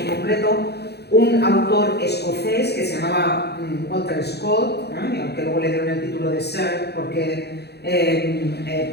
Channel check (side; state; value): right; late; 0.48 ms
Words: en concreto un autor escocés que se llamaba Walter Scott, aunque luego le dieron el título de Sir porque